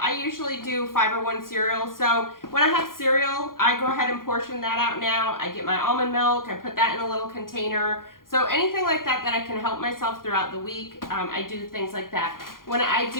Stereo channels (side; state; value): right; late; 0.91 ms